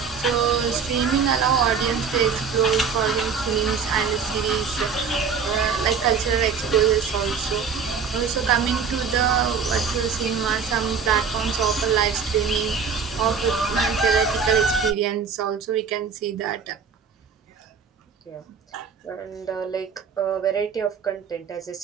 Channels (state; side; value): quieter; left; 6.0 dB